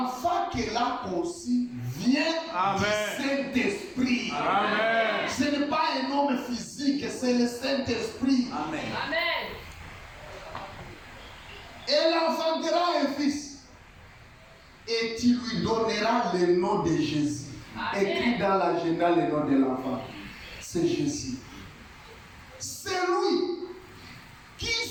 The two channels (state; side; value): identical; both; correlation 1.00